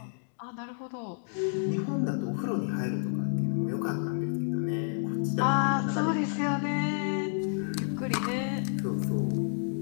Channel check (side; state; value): right; silent; digital silence